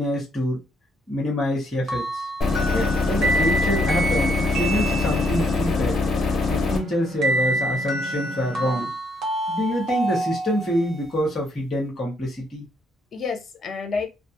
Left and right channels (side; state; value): both; normal; correlation 0.73